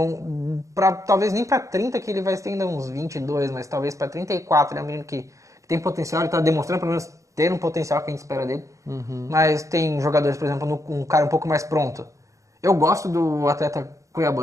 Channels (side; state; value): left; late; 0.15 ms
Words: Talvez nem pra 30, que ele vai ter ainda uns 22, mas talvez pra 34. Ele é um menino que tem potencial, ele tá demonstrando pelo menos ter um potencial que a gente espera dele. Mas tem jogadores, por exemplo, um cara um pouco mais pronto. Eu gosto do atleta